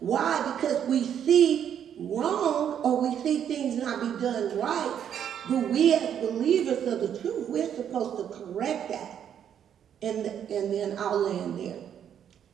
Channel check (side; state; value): left; quieter; 9.1 dB